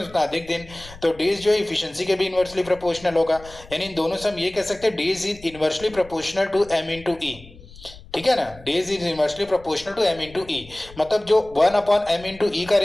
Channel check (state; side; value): noise; left; rumble, 20 dB below the sound